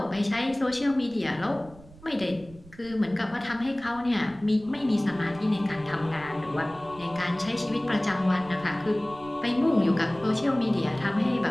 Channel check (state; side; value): noise; right; rumble, 21 dB below the sound